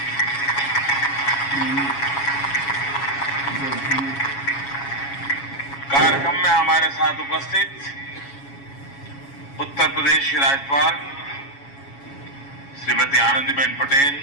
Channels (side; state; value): right; late; 7.2 ms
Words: कार्यक्रम में हमारे साथ उपस्थित उत्तर प्रदेश की राज्यपाल श्रीमती आनंदीबेन पटेल,